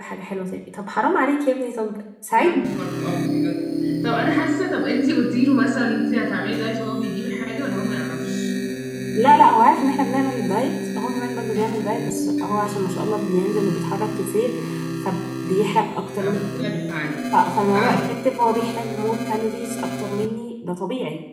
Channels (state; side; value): identical; both; correlation 1.00